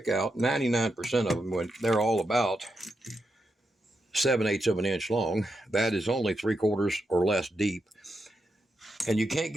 out. 99% of them, when they're all about 7/8 of an inch long. That is only 3/4 or less deep. And you can't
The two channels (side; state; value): both; normal; correlation 0.85